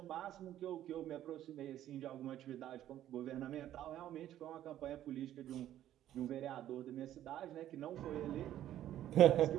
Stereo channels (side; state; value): left; quieter; 12.2 dB